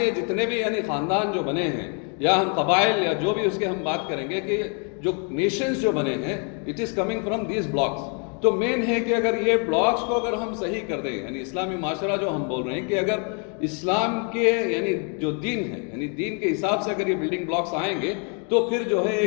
جتنے بھی یعنی خاندان جو بنے ہیں، یا ہم قبائل یا جو بھی اس کے ہم بات کریں گے کہ جو نیشنز جو بنے ہیں، it is coming from these blocks. تو مین ہے کہ اگر یہ بلاکس کو اگر ہم صحیح کر دیں، یعنی اسلامی معاشرہ جو ہم بول رہے ہیں کہ اگر اسلام کے یعنی جو دین ہے، یعنی دین کے حساب سے اگر یہ بلڈنگ بلاکس آئیں گے تو پھر جو ہے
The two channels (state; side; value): quieter; right; 39.2 dB